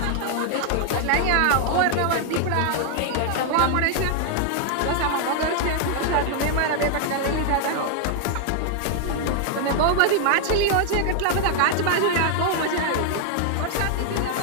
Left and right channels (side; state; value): both; different; correlation 0.00